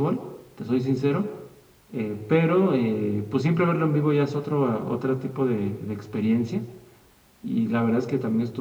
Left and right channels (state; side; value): identical; both; correlation 1.00